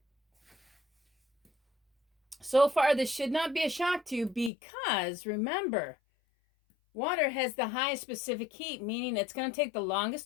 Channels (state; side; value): drops out; right; at 4.5 s